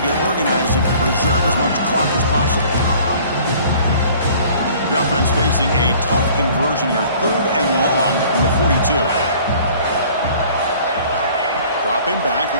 get organized and preserve as much clock as possible. The offense facing a tough conversion here. 3rd and long from the 42. Dropping back.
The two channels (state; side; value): inverted; both; correlation -0.51